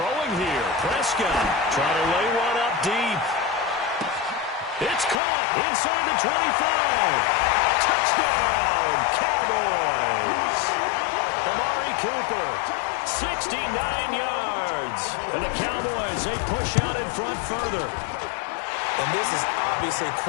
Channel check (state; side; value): drops out; right; at 5.2 s